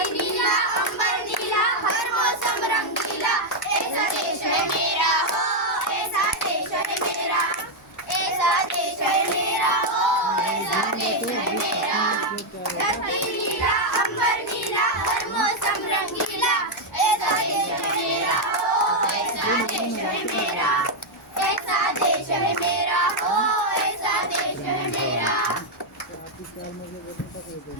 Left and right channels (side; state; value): both; normal; correlation 0.00